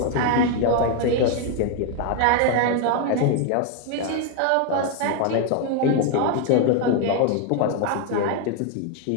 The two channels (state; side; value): different; both; correlation 0.01